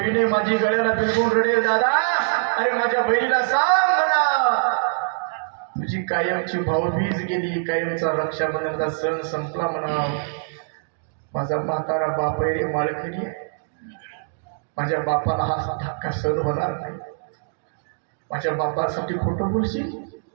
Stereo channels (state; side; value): silent; left; digital silence